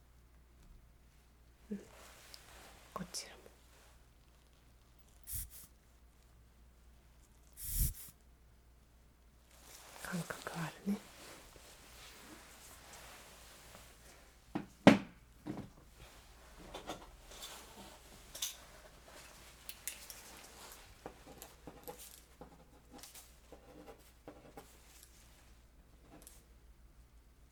こちらも感覚あるね。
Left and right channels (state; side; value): identical; both; correlation 1.00